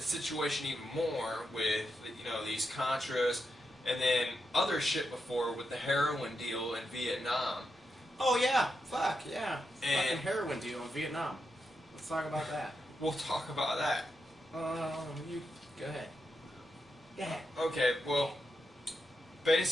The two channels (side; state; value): both; normal; correlation 0.86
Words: situation even more with these Contras, and then other shit before with the heroin deal in Vietnam. Oh yeah, fuck yeah, And fucking heroin deal in Vietnam. Let's talk about that. we'll talk about that. You go ahead. Go ahead. Okay, well,